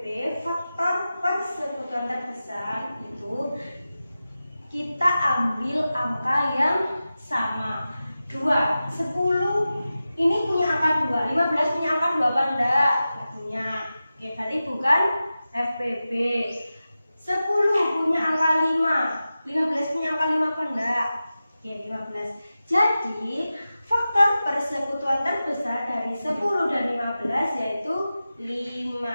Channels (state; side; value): inverted; both; correlation -0.94